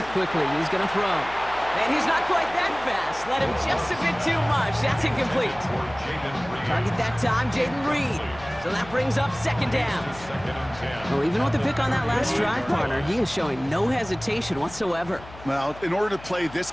quickly. He's going to throw. And he's not quite that fast. Let him just a bit too much. That's incomplete. Target that time, Jaden Reed. So that brings up 2nd down. Well, even with the pick on that last drive, partner, he is showing no hesitation whatsoever. Well, in order to play this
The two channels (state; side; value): noise; left; hum, 18 dB below the sound